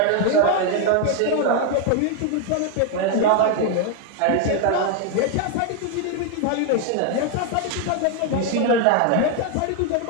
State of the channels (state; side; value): different; both; correlation 0.01